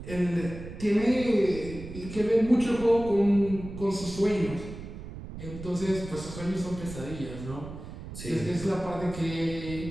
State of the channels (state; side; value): noise; right; rumble, 11 dB below the sound